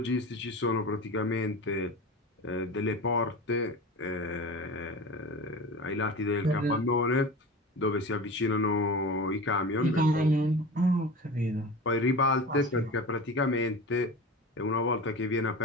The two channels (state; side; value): normal; both; correlation 0.32